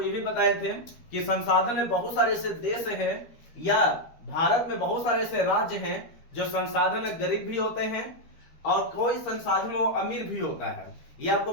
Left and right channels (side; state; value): right; late; 13 ms